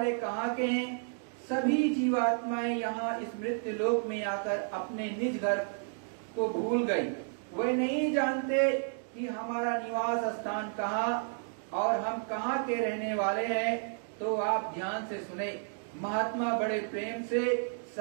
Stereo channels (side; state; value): left; silent; digital silence